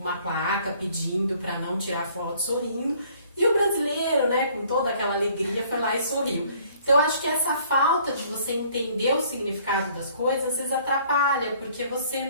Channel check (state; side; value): inverted; both; correlation -0.58